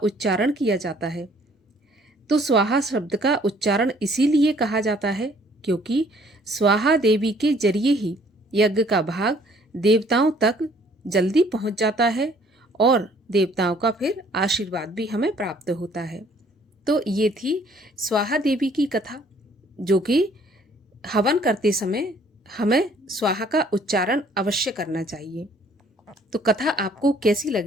किया जाता है। तो स्वाहा शब्द का उच्चारण इसीलिए कहा जाता है क्योंकि स्वाहा देवी के जरिए ही यज्ञ का भाग देवताओं तक जल्दी पहुंच जाता है और देवताओं का फिर आशीर्वाद भी हमें प्राप्त होता है। तो ये थी स्वाहा देवी की कथा, जो कि हवन करते समय हमें स्वाहा का उच्चारण अवश्य करना चाहिए। तो कथा आपको कैसी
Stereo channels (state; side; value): normal; both; correlation 0.60